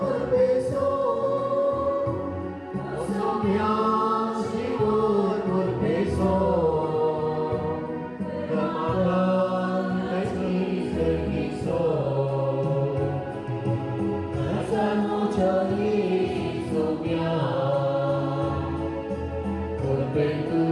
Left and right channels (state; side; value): identical; both; correlation 1.00